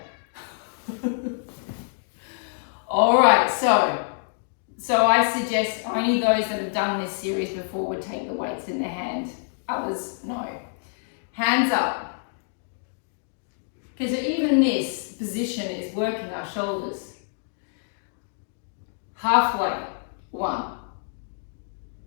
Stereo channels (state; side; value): silent; right; digital silence